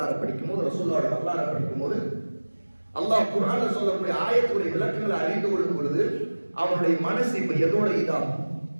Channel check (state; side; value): inverted; both; correlation -1.00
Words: படிக்கும் போது, ரசூலுல்லாஹ்வுடைய வரலாறு படிக்கும் போது, அல்லாஹ் குர்ஆன்ல சொல்லக்கூடிய ஆயத்துடைய விளக்கங்களை அறிந்து கொள்ளும் பொழுது அவனுடைய மனசு இப்ப எதோட இதாகும்?